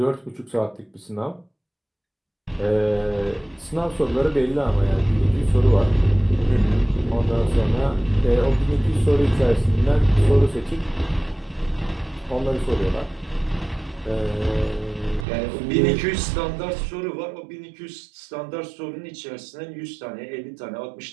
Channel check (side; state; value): left; drops out; at 15.2 s